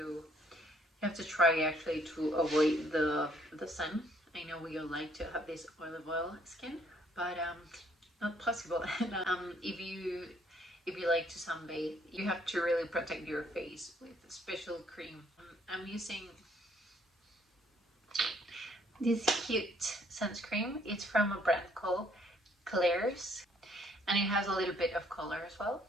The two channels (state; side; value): normal; both; correlation 0.64